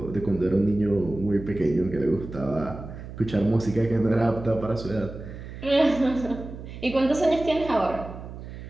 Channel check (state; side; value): noise; right; hum, 12 dB below the sound